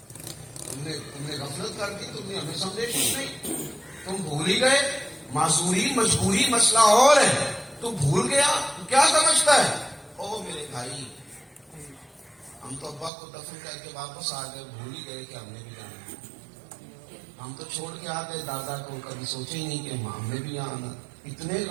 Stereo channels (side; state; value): left; drops out; at 13.1 s